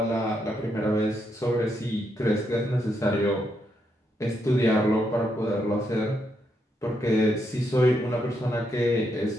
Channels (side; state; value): both; normal; correlation 0.79